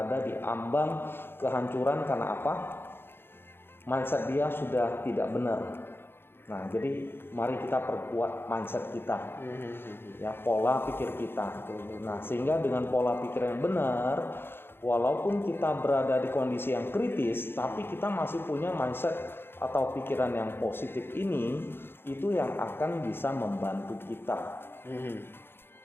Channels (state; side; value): late; right; 0.11 ms